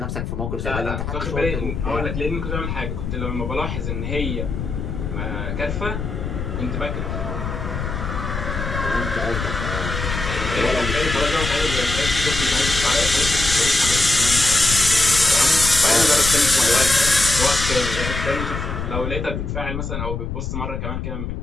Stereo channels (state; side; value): noise; left; rumble, 4 dB below the sound